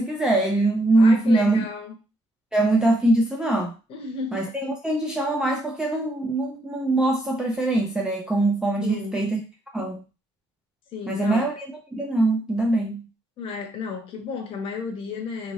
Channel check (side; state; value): both; normal; correlation 0.75